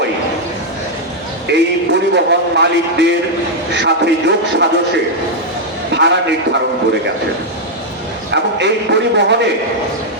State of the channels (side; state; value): both; normal; correlation -0.02